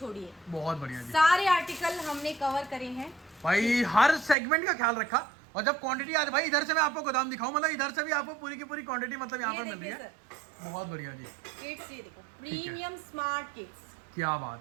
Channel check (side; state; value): left; drops out; at 4.4 s